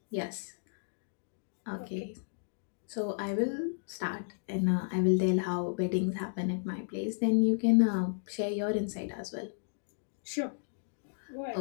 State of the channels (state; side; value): silent; right; digital silence